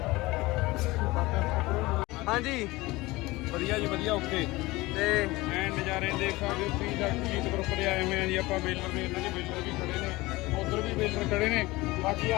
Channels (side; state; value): right; quieter; 20.8 dB